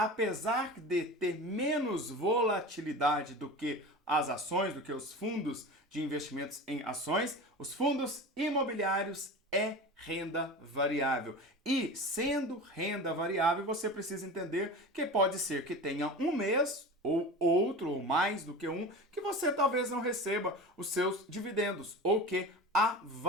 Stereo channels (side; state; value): both; normal; correlation 0.32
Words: de ter menos volatilidade do que as ações, do que os fundos de investimentos em ações, os fundos imobiliários é renda variável. E sendo renda variável, você precisa entender que pode ser que tenha um mês ou outro, ou mais do que um, que você talvez não receba os seus dividendos, ou que a